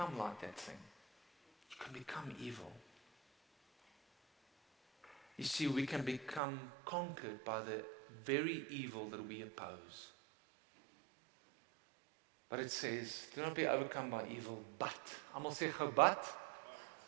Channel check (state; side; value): drops out; left; at 6.4 s